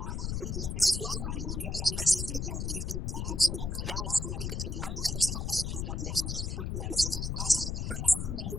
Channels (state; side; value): noise; left; rumble, 2 dB below the sound